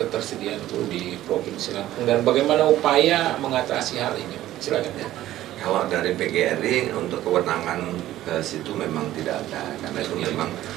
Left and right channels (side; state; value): left; quieter; 14.1 dB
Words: ketersediaan guru di Provinsi Lampung dan bagaimana upaya mengatasi hal ini? Silakan ya. Kalau dari PGRI untuk kewenangan ke situ memang tidak ada, karena itu memang